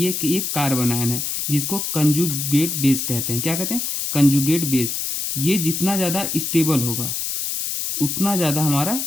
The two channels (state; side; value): noise; left; hiss, 2 dB below the sound